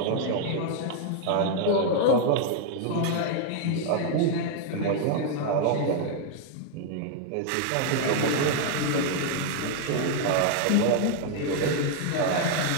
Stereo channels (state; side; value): different; both; correlation 0.00